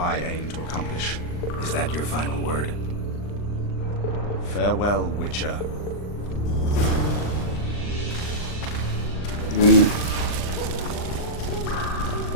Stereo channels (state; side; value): late; right; 39 ms